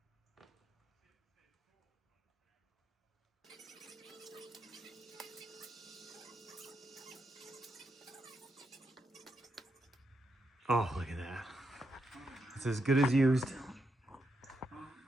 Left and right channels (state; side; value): normal; both; correlation 0.82